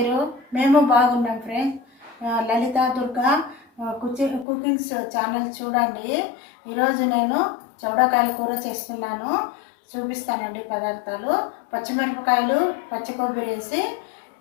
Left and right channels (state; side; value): drops out; right; at 4.5 s